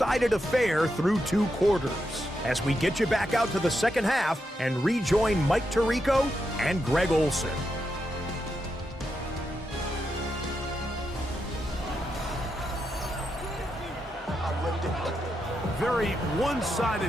affair through 2 quarters. As we get you back out to the 2nd half and rejoin Mike Tirico and Greg Olson. Very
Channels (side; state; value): both; normal; correlation 0.84